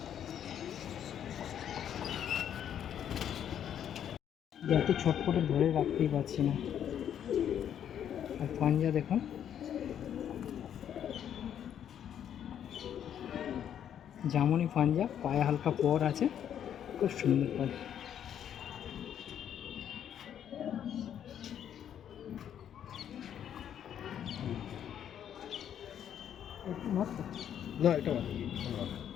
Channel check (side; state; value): right; quieter; 9.6 dB